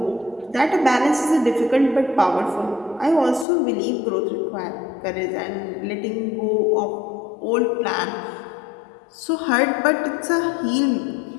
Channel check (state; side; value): drops out; right; at 3.5 s